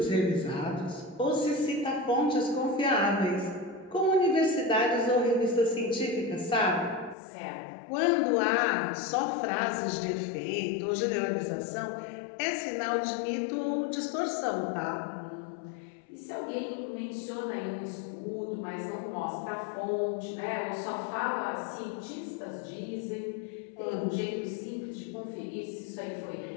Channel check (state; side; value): drops out; right; at 7.2 s